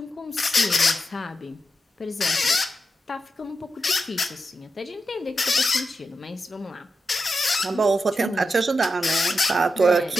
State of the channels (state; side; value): normal; both; correlation 0.87